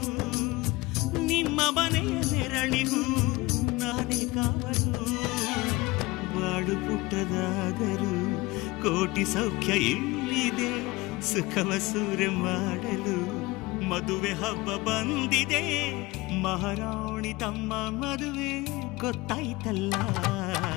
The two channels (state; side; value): quieter; right; 21.8 dB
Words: ನಿಮ್ಮ ಮನೆಯ ನೆರಳಿಗೂ ನಾನೇ ಕಾವಲು ಬಾಳು ಪುಟ್ಟದಾದರೂ ಕೋಟಿ ಸೌಖ್ಯ ಇಲ್ಲಿದೆ ಸುಖವ ಸೂರೆ ಮಾಡಲು ಮದುವೆ ಹಬ್ಬ ಬಂದಿದೆ. ಮಹಾರಾಣಿ ತಮ್ಮ ಮದುವೆ ಗೊತ್ತಾಯ್ತಲ್ಲ.